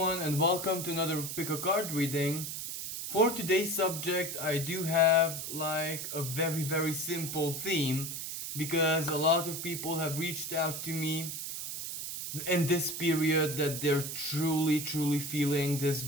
and welcome to another pick a card reading. For today's subject, I do have like a very simple theme because a lot of people have reached out to me in this period that they're truly feeling this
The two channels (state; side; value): noise; right; hiss, 6 dB below the sound